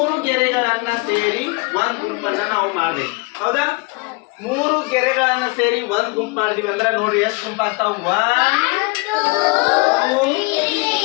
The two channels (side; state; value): right; quieter; 27.4 dB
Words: ಗೆರೆಗಳನ್ನ ಸೇರಿ ಒಂದ್ ಗುಂಪನ್ನ ನಾವು ಮಾಡ್ಬೇಕು. ಹೌದಾ? 3 ಗೆರೆಗಳನ್ನ ಸೇರಿ ಒಂದ್ ಗುಂಪು ಮಾಡಿದ್ವಿ ಅಂದ್ರೆ ನೋಡ್ರಿ ಎಷ್ಟು ಗುಂಪ ಆಗ್ತಾವ? 1 2 3.